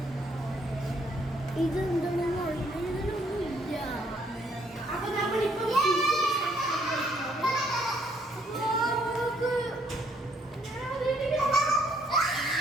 ഇതെന്താണെന്ന് അറിയില്ല. അപ്പൊ നമ്മളിപ്പോ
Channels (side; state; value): both; normal; correlation 0.68